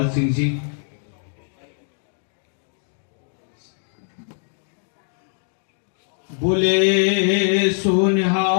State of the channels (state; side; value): silent; right; digital silence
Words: सिंह जी। बोले